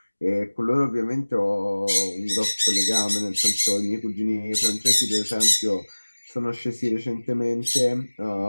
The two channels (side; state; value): both; inverted; correlation -1.00